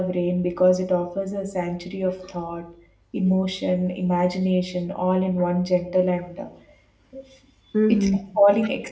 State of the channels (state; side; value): identical; both; correlation 1.00